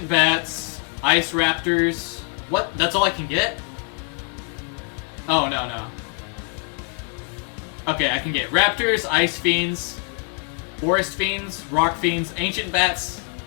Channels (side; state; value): right; quieter; 34.6 dB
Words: Bats, Ice Raptors. What? That's all I can get? Oh, no. Okay, I can get Raptors, Ice Fiends, Forest Fiends, Rock Fiends, Ancient Bats,